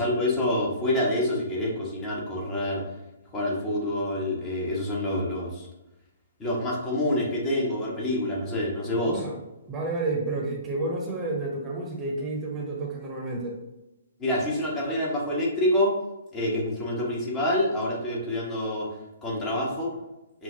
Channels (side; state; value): both; inverted; correlation -0.39